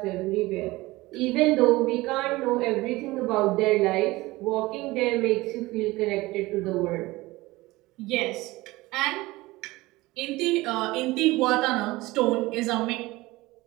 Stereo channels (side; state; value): left; quieter; 20.1 dB